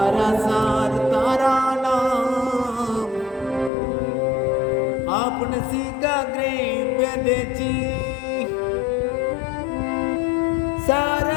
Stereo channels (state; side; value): drops out; right; at 3.7 s